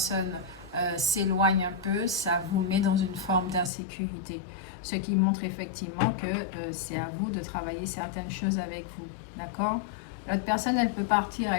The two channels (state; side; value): drops out; right; at 3.7 s